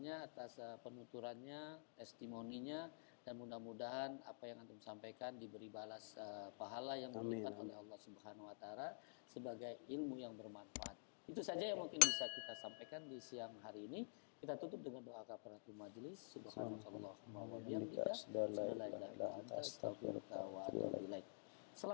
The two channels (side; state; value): right; silent; digital silence